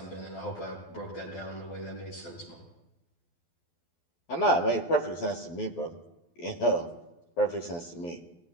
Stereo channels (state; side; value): late; right; 12 ms